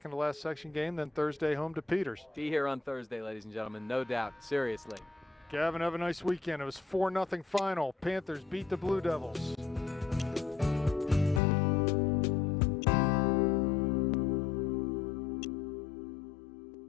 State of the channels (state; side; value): drops out; right; at 11.4 s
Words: to last section game, then Thursday home to Peters. Be here on Thursday, ladies and gentlemen, no doubt. Seriously. Gavin, have a nice weekend. It was 4-0 final. Panthers beat the Blue Devils.